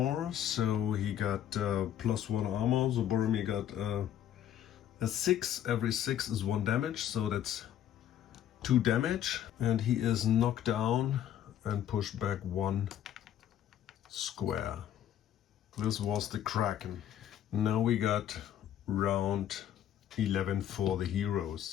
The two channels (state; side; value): quieter; right; 10.7 dB